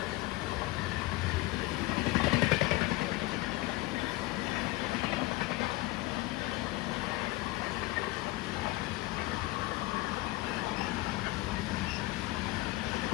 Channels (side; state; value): right; quieter; 19.7 dB